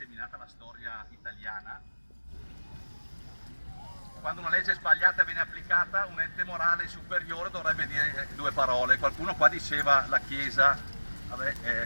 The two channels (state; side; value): inverted; both; correlation -1.00